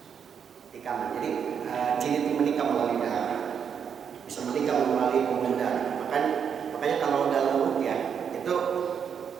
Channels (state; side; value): quieter; left; 7.4 dB